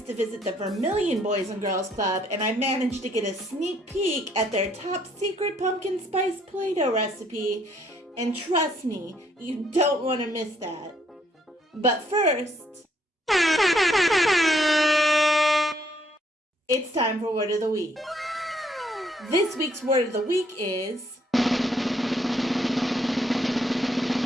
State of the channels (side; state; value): both; normal; correlation 0.68